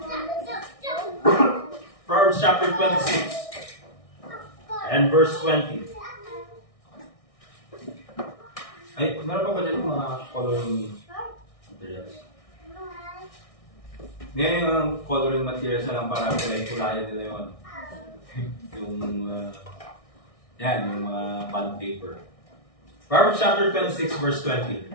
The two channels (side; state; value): right; late; 1.6 ms